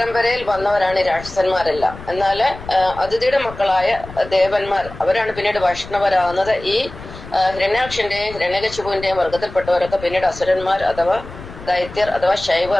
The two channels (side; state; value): left; noise; rumble, 15 dB below the sound